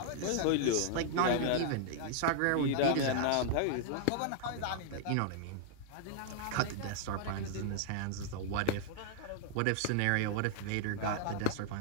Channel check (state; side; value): different; both; correlation 0.00